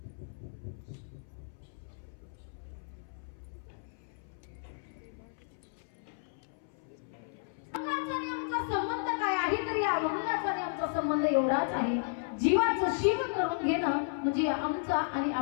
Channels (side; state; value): right; silent; 55 dB below the other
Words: संबंध काय आहे तर या अभंगाचा आणि आमचा संबंध एवढाच आहे. जीवाचं शिव करून घेणं म्हणजे आमचा आणि